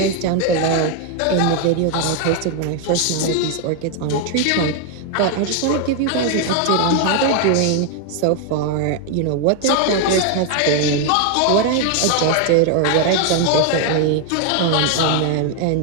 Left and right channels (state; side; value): different; both; correlation 0.01